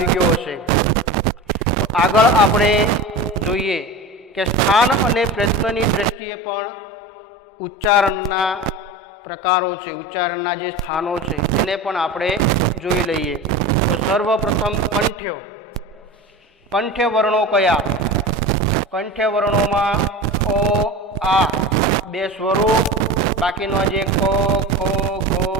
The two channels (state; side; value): normal; both; correlation 0.30